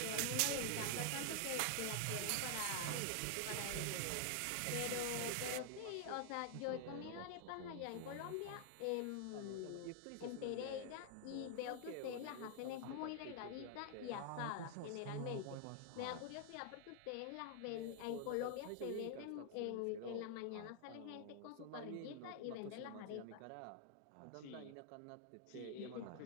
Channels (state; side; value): different; both; correlation 0.00